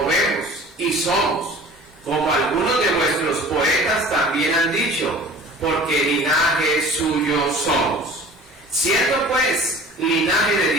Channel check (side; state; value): both; normal; correlation 0.44